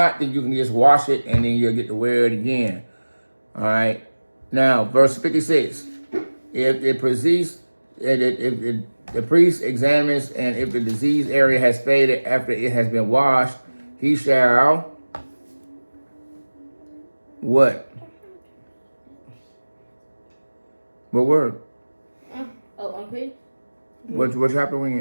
then you can just wash it and then you'll get to wear it again. All right. Now, verse 56. If the priest examines and if the disease area has faded after it has been washed, he shall what? What word? Unclean. What chapter we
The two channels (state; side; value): inverted; both; correlation -1.00